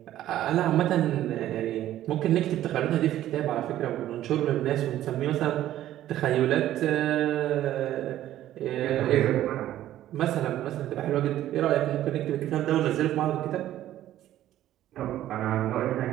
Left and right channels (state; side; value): quieter; left; 13.0 dB